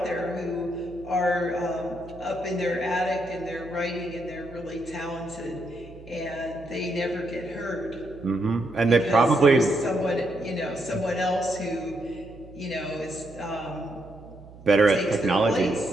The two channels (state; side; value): noise; right; hum, 19 dB below the sound